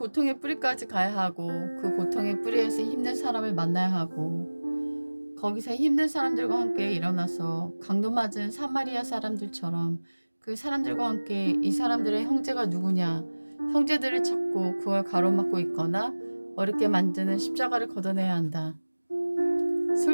뿌리까지 가야 하고 그 고통의 뿌리에서 힘든 사람을 만나야 하고 거기서 힘든 사람들과 함께 일어나서 강도 맞은 사마리아 사람들처럼 그 사람들과 함께 이 사람들의 형제가 누구냐 형제들을 찾고 그걸 가로막고 있거나 어렵게 만드는 십자가를 걷어내야 한다.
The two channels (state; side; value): inverted; both; correlation -1.00